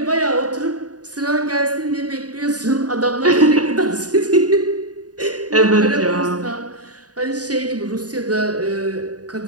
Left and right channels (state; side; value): late; left; 0.68 ms